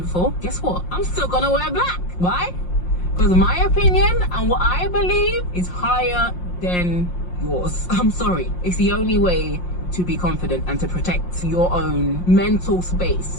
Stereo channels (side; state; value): right; late; 5.6 ms